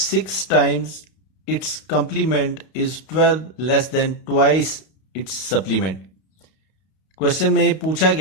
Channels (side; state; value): right; late; 32 ms